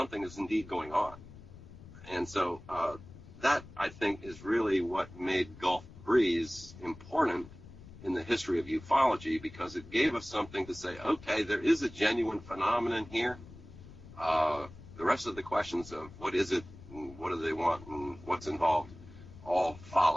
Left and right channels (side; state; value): left; noise; rumble, 17 dB below the sound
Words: is indeed going on. And so that, I think, is really what made Gulf Breeze important in the history of ufology, because it gave us something to say, okay, there is a genuine phenomenon here. The rest of the questions of what is it, and what do they want, and what's involved, all